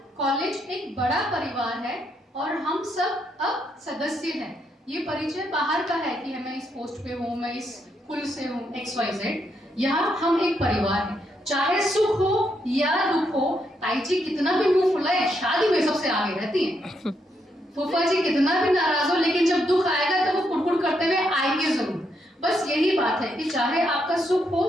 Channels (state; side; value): normal; both; correlation 0.78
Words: कॉलेज एक बड़ा परिवार है और हम सब अब सदस्य हैं। ये परिचय बाहर का है कि मैं इस पोस्ट पे हूँ, मैं इस कुल से हूँ, XYZ। यहाँ हम एक परिवार हैं, चाहे सुख हो या दुख हो। ताई जी कितना भी मुंह फुलाए, शादी में सबसे आगे रहती है। फूफा जी कितना भी नाराज हो, लेकिन जब दुख आएगा तो वो कुड़कुड़ करते हुए आएंगे जरूर। बस यही बात है कि चाहे आपका सुख